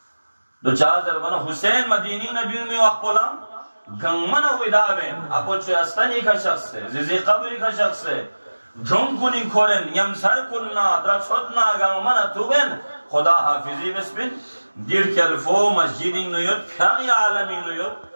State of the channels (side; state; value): both; inverted; correlation -1.00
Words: دو چار ضربنا حسین مدینی نہ بیوں میں وقت پولا گنگمن ویدابین اپو چو استنی کا شخص ہے زیزی قبری کا شخص ہے دھن کنی کھولن یم سر کننا در چھتنا گنگمن توبین خدا حافظی بسبین دیر کلفو مسجدی نیوت پھاقی عالمی نیوت